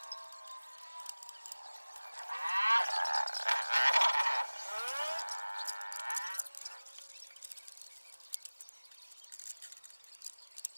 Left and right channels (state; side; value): inverted; both; correlation -1.00